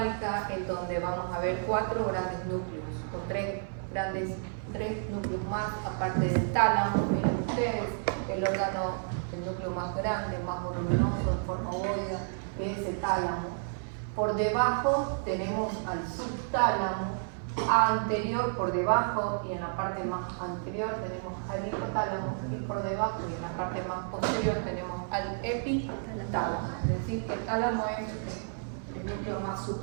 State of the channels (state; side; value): silent; left; 57 dB below the other